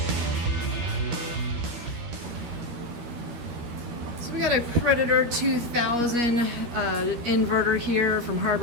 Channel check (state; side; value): late; left; 12 ms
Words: So we got a Predator 2000 inverter here from